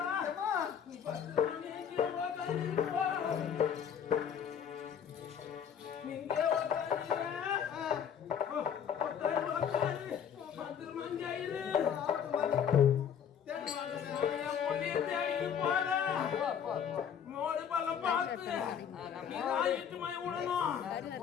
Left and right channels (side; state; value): right; quieter; 8.1 dB